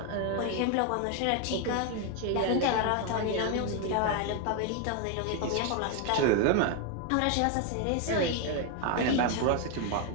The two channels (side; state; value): both; different; correlation 0.01